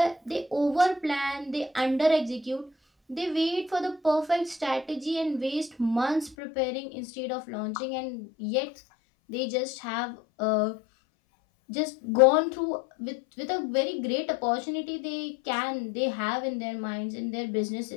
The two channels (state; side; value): drops out; right; at 6.4 s